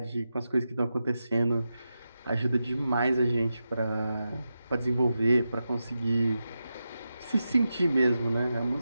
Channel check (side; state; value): both; inverted; correlation -0.90